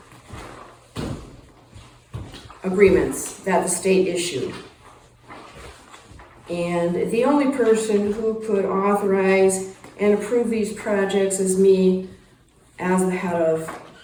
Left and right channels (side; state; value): both; identical; correlation 1.00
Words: agreements that the state issued. And the only person who could authorize and approve these projects is me as the head of